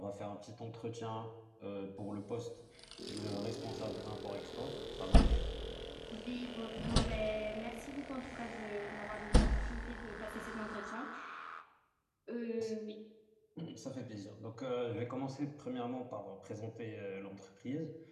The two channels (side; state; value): both; identical; correlation 1.00